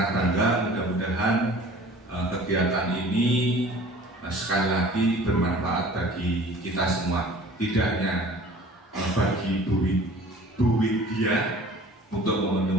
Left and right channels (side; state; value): both; normal; correlation 0.46